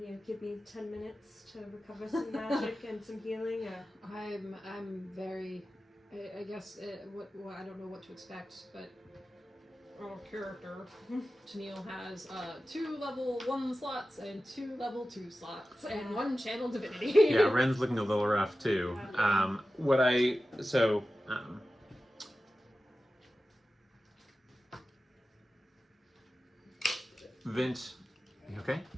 You know, give me 10 minutes to recover some magic and some healing. Or... I'm very... I guess I don't know what to expect, but our character, Tennille, has 2 level 1 slots and 2 level 2 slots and 1 channel divinity. Yeah, Ren's looking a little rough too. Vint You okay?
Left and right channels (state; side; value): normal; both; correlation 0.94